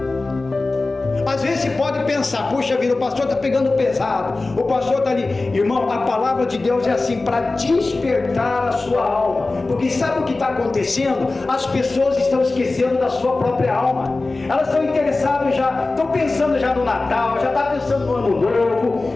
Às vezes você pode pensar, puxa vida, o pastor está pegando pesado, o pastor está ali. Irmão, a palavra de Deus é assim, para despertar a sua alma. Porque sabe o que está acontecendo? As pessoas estão esquecendo da sua própria alma. Elas estão interessadas já, estão pensando já no Natal, já está pensando no Ano Novo,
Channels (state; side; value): quieter; right; 3.4 dB